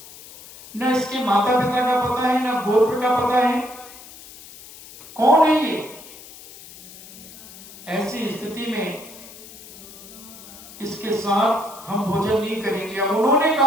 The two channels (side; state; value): left; noise; hiss, 18 dB below the sound